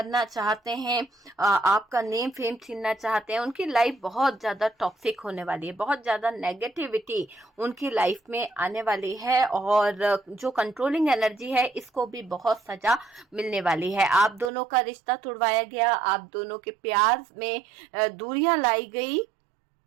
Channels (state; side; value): drops out; left; at 14.5 s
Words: चाहते हैं, आपका नेम फेम छीनना चाहते हैं, उनकी लाइफ बहुत ज्यादा टॉक्सिक होने वाली है, बहुत ज्यादा नेगेटिविटी उनकी लाइफ में आने वाली है, और जो कंट्रोलिंग एनर्जी है इसको भी बहुत सजा मिलने वाली है। आप दोनों का रिश्ता तुड़वाया गया, आप दोनों के प्यार में दूरियां लाई गई,